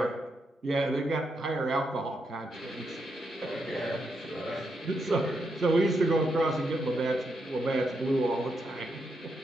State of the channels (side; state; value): both; normal; correlation 0.82